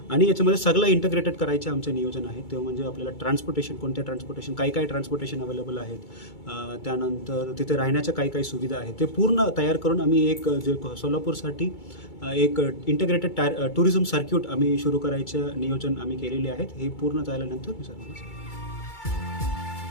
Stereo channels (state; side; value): late; right; 2.3 ms